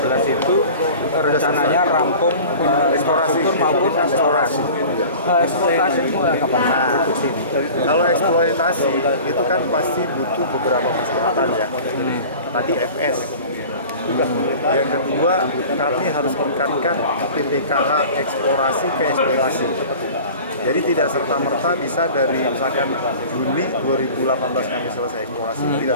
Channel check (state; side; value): inverted; both; correlation -0.40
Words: itu rencananya rampung infrastruktur maupun eksplorasi. Eksploitasi mulai kapan? Nah, kalau eksploitasi itu kan pasti butuh beberapa persyaratan ya. Tadi FS. Yang kedua, kami harus meningkatkan PPKH eksplorasi ke eksploitasi. Jadi tidak serta-merta bisa dari misalkan Juni 2018 kami selesai eksplorasi, tidak